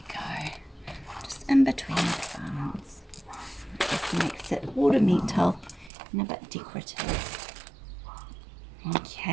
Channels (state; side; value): drops out; left; at 5.9 s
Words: go. Just in between the plants. Just makes it ornamental and a bit decorative.